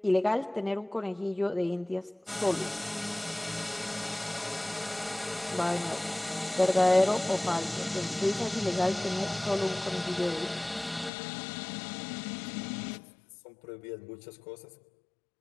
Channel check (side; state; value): right; drops out; at 11.1 s